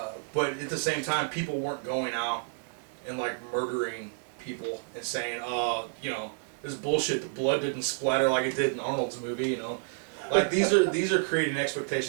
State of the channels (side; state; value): left; silent; digital silence